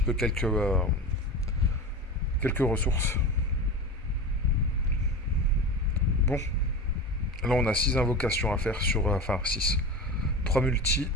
peu quelques ressources. Bon, là on a 6 invocations à faire sur... enfin 6. 3 multi.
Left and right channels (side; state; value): both; normal; correlation 0.28